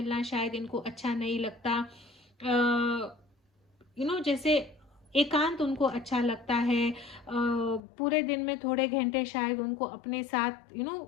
शायद इनको अच्छा नहीं लगता। जैसे एकांत उनको अच्छा लगता है। पूरे दिन में थोड़े घंटे शायद उनको अपने साथ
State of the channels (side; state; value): right; drops out; at 7.8 s